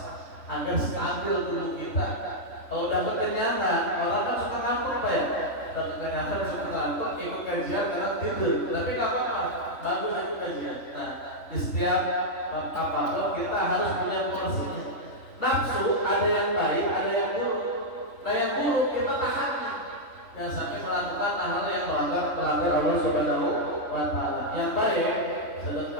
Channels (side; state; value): right; late; 3.4 ms